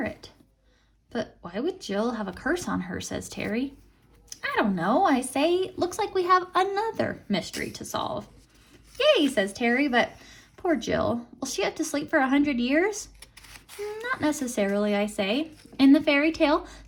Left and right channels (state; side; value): identical; both; correlation 1.00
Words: But why would Jill have a curse on her, says Terry. I don't know, I say. Looks like we have another mystery to solve. Yay, says Terry, but poor Jill. Will she have to sleep for 100 years? Not necessarily, I say. In the fairy tale,